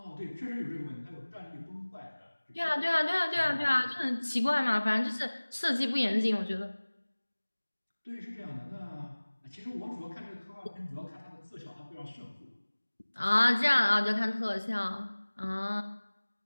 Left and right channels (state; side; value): inverted; both; correlation -1.00